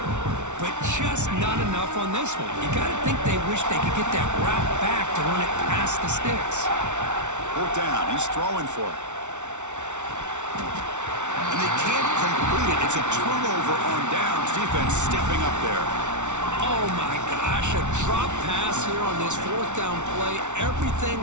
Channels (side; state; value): left; late; 0.84 ms